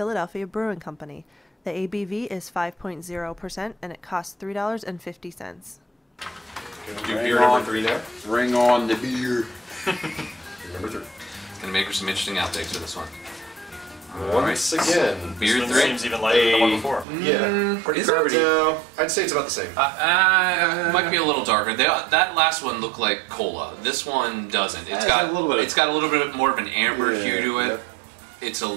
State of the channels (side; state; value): left; drops out; at 17.1 s